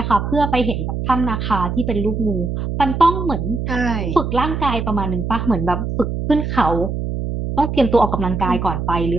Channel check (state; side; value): noise; right; hum, 3 dB below the sound